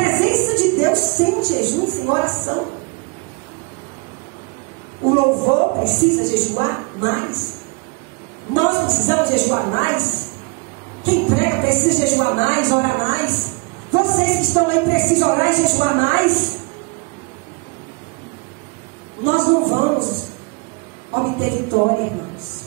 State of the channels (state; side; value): quieter; left; 30.0 dB